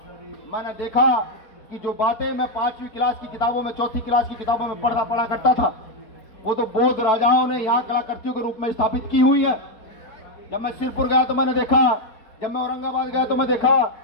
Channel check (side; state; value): right; late; 4.2 ms